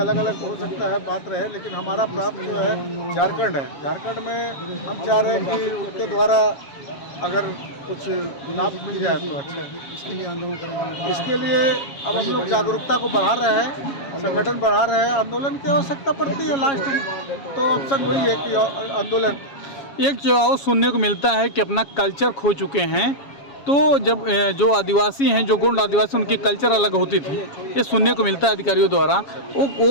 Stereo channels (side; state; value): right; late; 7.2 ms